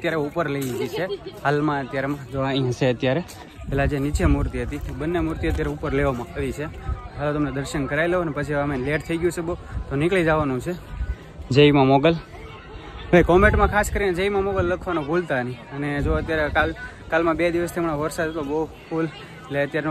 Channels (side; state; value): both; identical; correlation 1.00